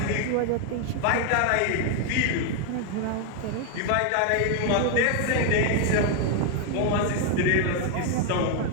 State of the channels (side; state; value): both; different; correlation 0.01